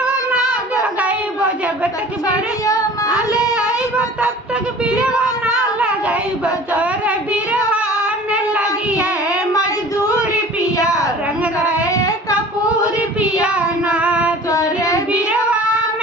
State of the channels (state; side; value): normal; both; correlation 0.44